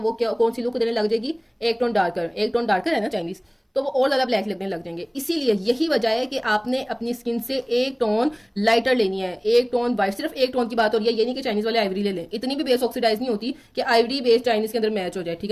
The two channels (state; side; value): identical; both; correlation 1.00